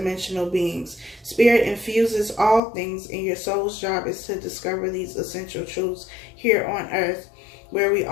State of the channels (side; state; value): right; drops out; at 2.6 s